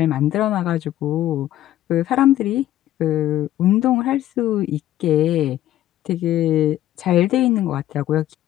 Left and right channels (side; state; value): right; quieter; 13.3 dB